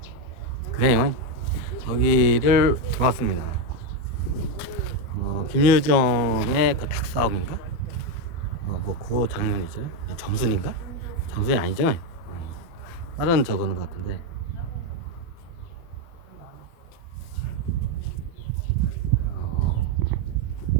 그래요. 여기를 들어왔습니다. 김유정의 그 닭싸움인가? 뭐 그거 장면이죠. 점순인가? 점순이 아니죠? 다른 저거는 같은데.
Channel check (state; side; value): late; right; 12 ms